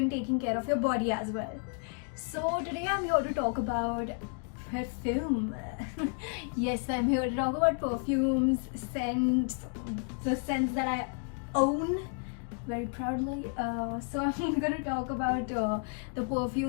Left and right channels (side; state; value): right; quieter; 39.8 dB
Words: taking care of your body as well. So today I'm here to talk about perfume. Yes, I'm here to talk about perfumes, scents, the scents that I own very proudly. So I'm going to talk about the